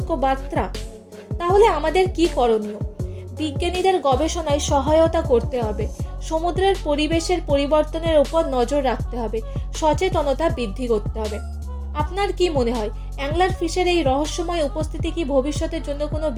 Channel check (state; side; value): identical; both; correlation 1.00